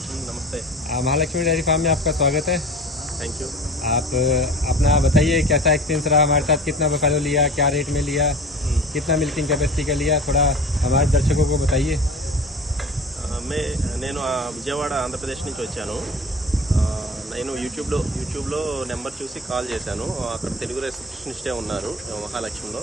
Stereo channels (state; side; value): normal; both; correlation 0.38